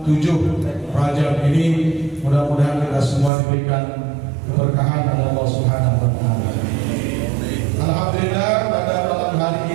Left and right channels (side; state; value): left; drops out; at 3.3 s